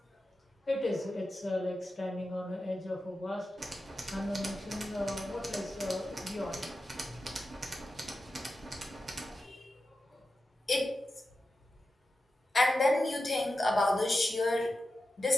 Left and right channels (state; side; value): normal; both; correlation 0.91